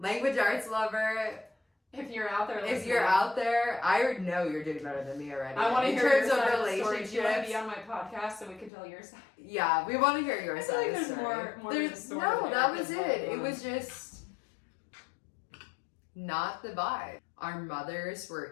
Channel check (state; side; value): drops out; right; at 8.7 s